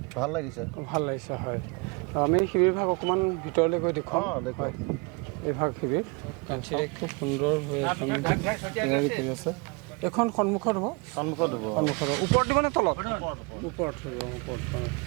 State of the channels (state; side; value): quieter; left; 30.0 dB